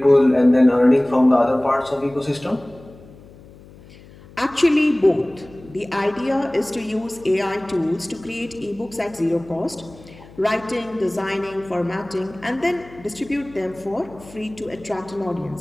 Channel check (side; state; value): left; noise; hum, 22 dB below the sound